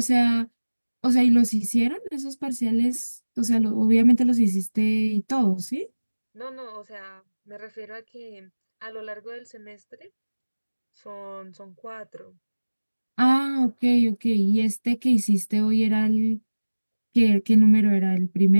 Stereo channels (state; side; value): inverted; both; correlation -1.00